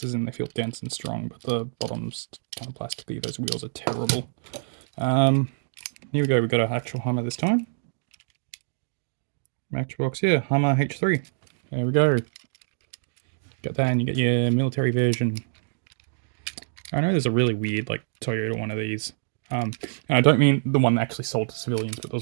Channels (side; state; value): left; silent; digital silence